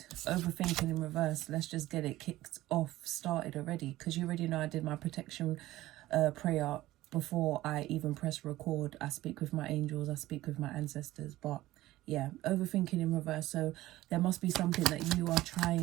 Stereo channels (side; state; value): left; quieter; 16.5 dB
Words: Overthinking in reverse. Let's just get it kicked off, started already, because you already know I did my protection prayer before I even press record. I speak with my angels, I speak with my ancestors, but yeah, overthinking in reverse. So there must be something that you are